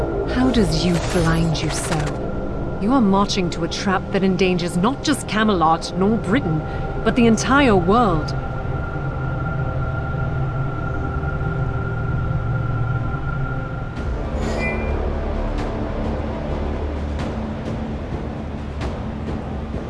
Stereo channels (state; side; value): identical; both; correlation 1.00